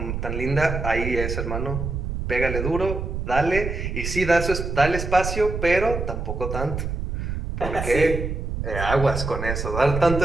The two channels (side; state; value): right; noise; rumble, 4 dB below the sound